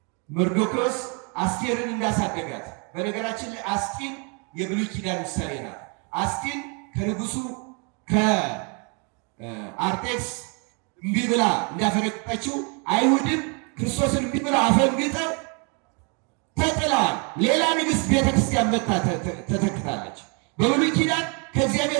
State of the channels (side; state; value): left; quieter; 34.9 dB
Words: መርዶክዮስ አስቴርን እንዳሳደጋት። በነገራችን ላይ አስጢን የብሉይ ኪዳን ምሳሌ ናት። አስጢን ከንጉሱ ከአርጤክስ እምቢ ብላ እንዳፈነቀጠችው አይሁድም ክርስቶስን እምቢ ብላ አፈንግጠው ተጥለዋል። ሌላ ንግሥት ቤተክርስቲያን መታ ተተክታለች። በብሉይ ኪዳን